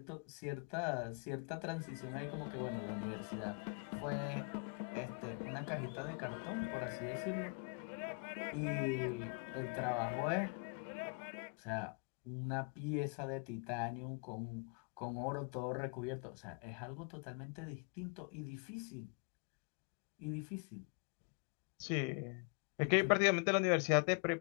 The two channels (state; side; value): quieter; right; 35.3 dB